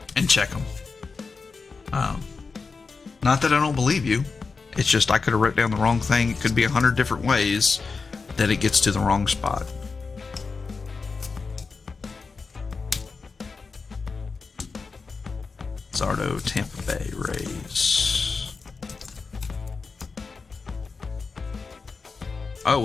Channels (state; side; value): quieter; right; 4.6 dB